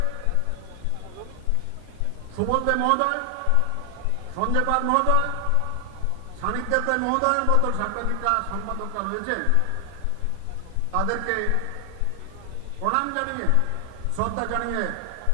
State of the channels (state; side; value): different; both; correlation 0.00